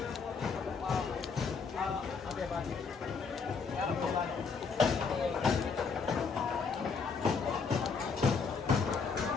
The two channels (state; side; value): quieter; right; 5.2 dB